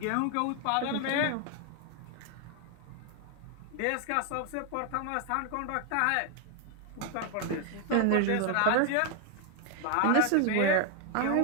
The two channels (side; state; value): both; different; correlation 0.00